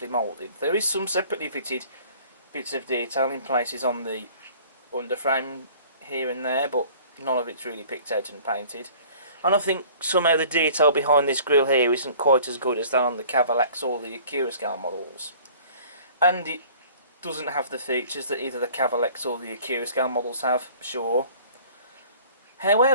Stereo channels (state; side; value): inverted; both; correlation -0.50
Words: moulded. There is some separately fitted bits of detail in places on the underframe here and there, but none of it's really picked out and painted. And I think somehow the detail behind this grille here isn't quite as good as that on the Cavalax or the Accurascale models. And it doesn't have the features that either the Cavalax or the Accurascale models have, sure.